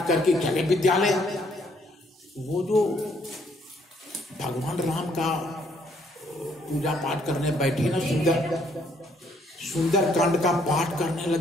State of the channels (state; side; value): normal; both; correlation 0.68